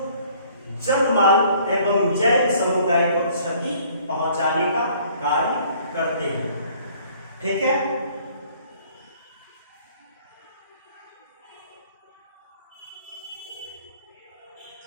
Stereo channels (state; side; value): inverted; both; correlation -0.57